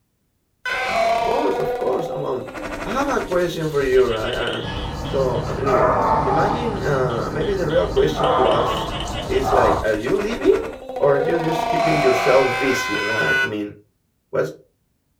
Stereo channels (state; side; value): identical; both; correlation 1.00